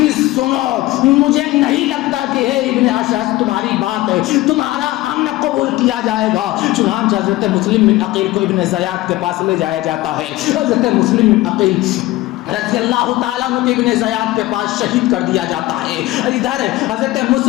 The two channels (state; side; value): quieter; right; 17.6 dB